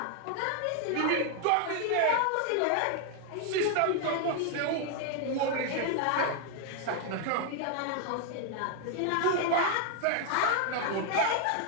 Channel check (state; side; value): different; both; correlation 0.00